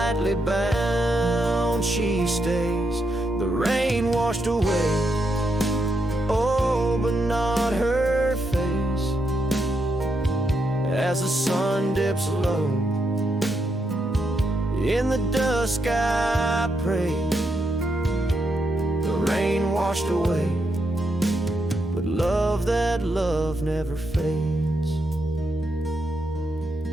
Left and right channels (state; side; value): normal; both; correlation 0.81